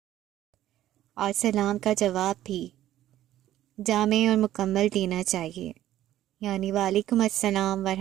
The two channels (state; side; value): quieter; left; 13.2 dB